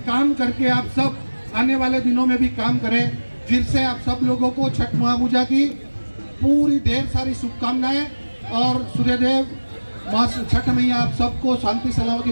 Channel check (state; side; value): inverted; both; correlation -1.00